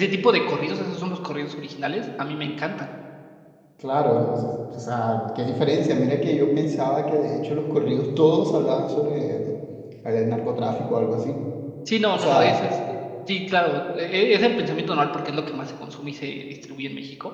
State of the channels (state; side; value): identical; both; correlation 1.00